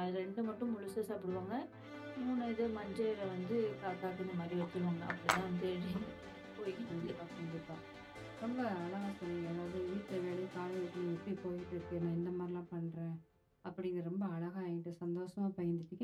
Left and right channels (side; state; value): both; identical; correlation 1.00